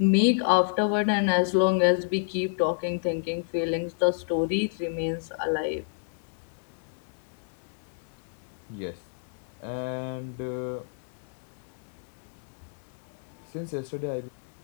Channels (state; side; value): silent; right; digital silence